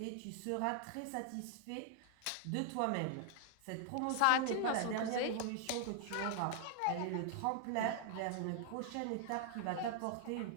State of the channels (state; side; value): different; both; correlation 0.00